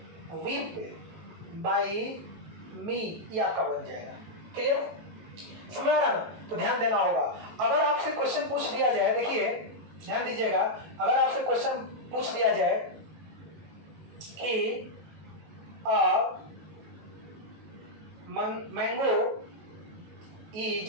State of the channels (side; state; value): left; late; 18 ms